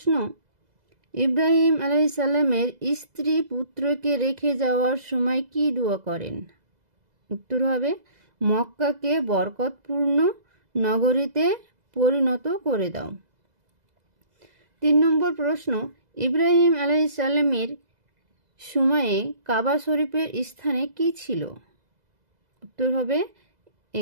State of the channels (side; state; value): left; late; 2.0 ms